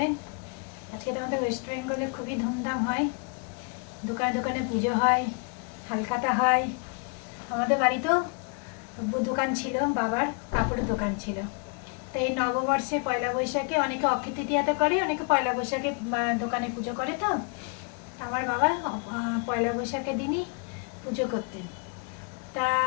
আজকে তো আমাদের ওয়েস্ট বেঙ্গলে খুবই ধুমধাম হয়, দোকানে দোকানে পুজো হয়, হালখাতা হয়। আমাদের বাড়িতেও দোকান ছিল, বাবার কাপড়ের দোকান ছিল। তো এই নববর্ষে পয়লা বৈশাখে অনেকে অক্ষয় তৃতীয়াতে করে, অনেকে পয়লা বৈশাখে দোকানে পুজো করে। তো আমার বাবা পয়লা বৈশাখের দিনই পুজো করতেন। তা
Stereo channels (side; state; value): right; quieter; 37.0 dB